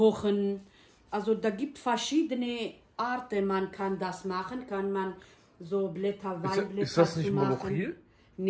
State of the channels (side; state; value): both; identical; correlation 1.00